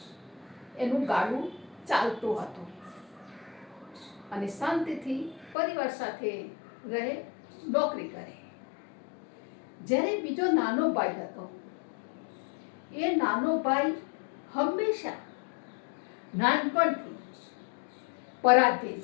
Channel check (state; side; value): drops out; right; at 5.6 s